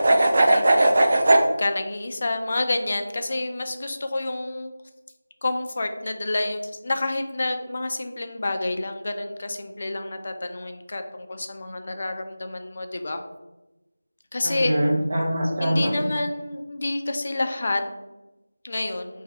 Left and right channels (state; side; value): inverted; both; correlation -0.95